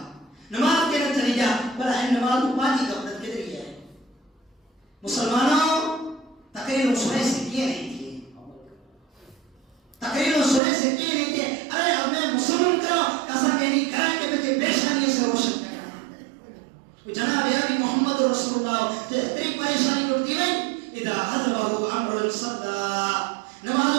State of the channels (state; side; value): drops out; left; at 10.6 s